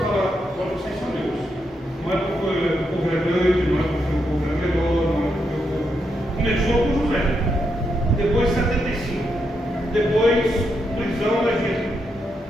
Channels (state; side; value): normal; both; correlation 0.82